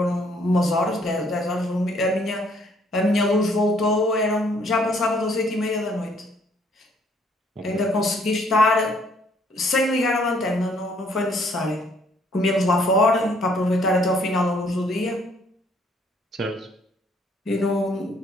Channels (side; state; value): both; normal; correlation 0.64